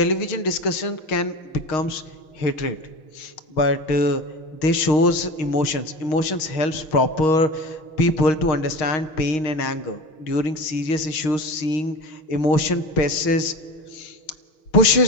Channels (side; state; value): right; late; 6.5 ms